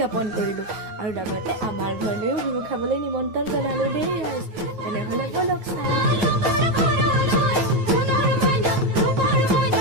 কৰিলোঁ আৰু লগতে আমাৰ ঘৰলৈও বিহু খাবলৈ নিমন্ত্ৰণ জনালোঁ দেই। তেনেহ'লে ব'লক চাওঁ।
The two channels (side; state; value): left; late; 9.3 ms